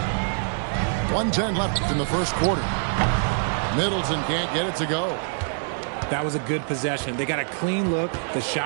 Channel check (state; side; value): silent; left; digital silence